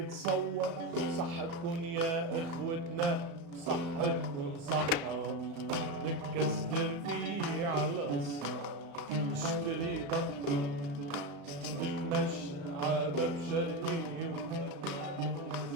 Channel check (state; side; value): late; left; 35 ms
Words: تصور صحتكن يا اخوتنا صحتكن صحة نكسر فيه على الصح نشتري بطة نتمشى عابب شرقي